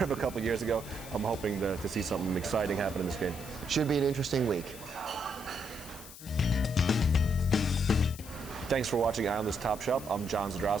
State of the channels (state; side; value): noise; left; hiss, 16 dB below the sound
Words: a couple years ago. I'm hoping to see something exciting happen in this game. Should be an interesting week. Thanks for watching Islanders Top Shelf. I'm John